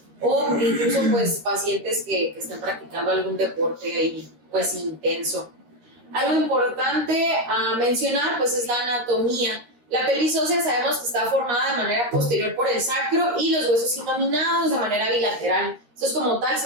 o incluso pues pacientes que están practicando algún deporte ahí pues intenso. Algo importante a mencionar pues es la anatomía. La pelvis ósea sabemos que está formada de manera posterior por el sacro y los huesos innominados de manera bilateral. Estos como tal se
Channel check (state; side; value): late; left; 13 ms